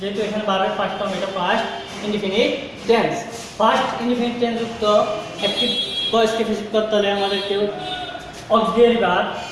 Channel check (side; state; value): both; identical; correlation 1.00